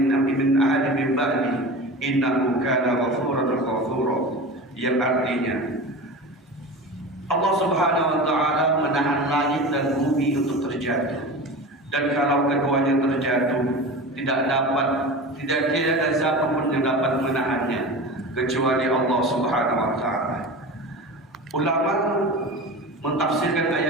min ba'di innahu kana ghafuran ghafura, yang artinya Allah Subhanahu wa taala menahan langit dan bumi untuk terjatuh, dan kalau keduanya terjatuh tidak ada siapapun yang dapat menahannya kecuali Allah Subhanahu wa taala. Ulama mentafsirkan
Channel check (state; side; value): normal; both; correlation 0.31